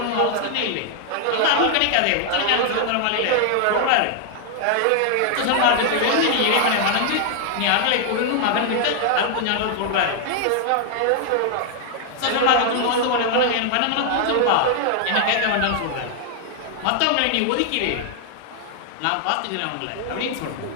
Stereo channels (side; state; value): both; different; correlation 0.00